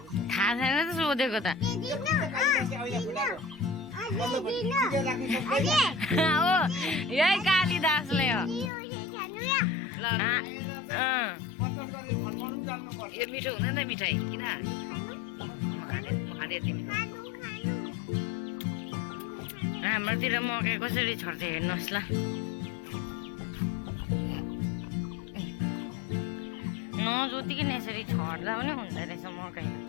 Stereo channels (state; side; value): drops out; right; at 8.7 s